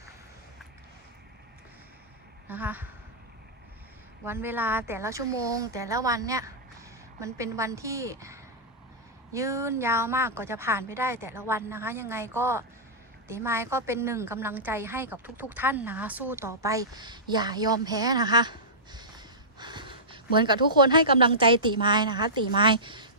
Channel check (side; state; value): both; normal; correlation -0.16